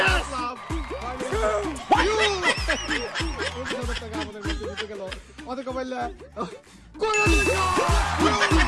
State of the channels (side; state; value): both; identical; correlation 1.00